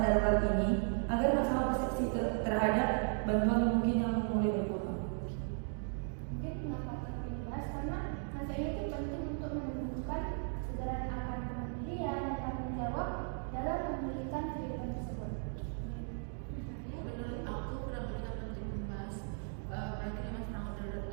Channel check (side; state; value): left; silent; 54 dB below the other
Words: darurat ini agar masalah persepsi terhadap bantuan mungkin yang mulai berkurang. Mungkin mengapa penting dibahas karena rasanya itu penting untuk menumbuhkan kesadaran akan kemandirian dan tanggung jawab dalam memulihkan kehidupan tersebut. Menurut aku kenapa penting membahas berakhir masa tanggap darurat